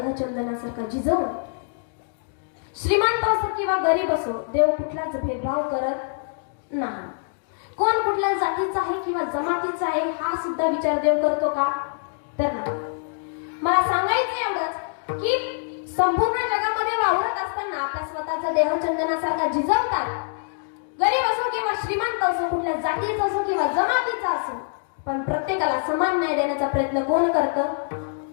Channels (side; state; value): right; silent; digital silence